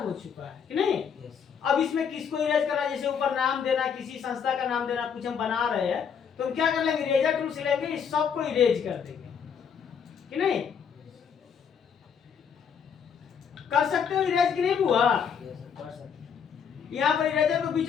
हो चुका है कि नहीं। अब इसमें किसको इरेज करना, जैसे ऊपर नाम देना, किसी संस्था का नाम देना, कुछ हम बना रहे हैं तो हम क्या कर लेंगे, इरेजर टूल से लेंगे, इस सबको इरेज कर देंगे कि नहीं। कर सकते हो इरेज कि नहीं बुआ? यहाँ पर इरेजर को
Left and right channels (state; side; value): quieter; right; 7.1 dB